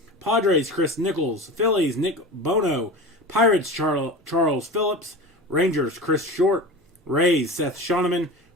Padres, Chris Nichols, Phillies, Nick Bono, Pirates, Charles Phillips, Rangers, Chris Short, Rays, Seth Shoneman,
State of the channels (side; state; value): both; normal; correlation 0.31